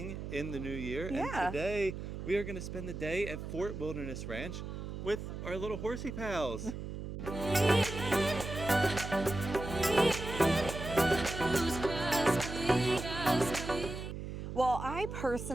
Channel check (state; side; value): noise; right; hum, 7 dB below the sound